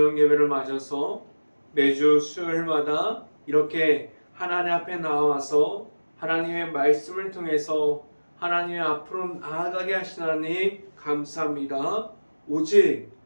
예배를 맞아서 매주 수요일마다 이렇게 하나님 앞에 나와서 하나님의 말씀을 통해서 하나님의 앞으로 나아가게 하신 하나님 감사합니다. 오직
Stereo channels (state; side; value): inverted; both; correlation -1.00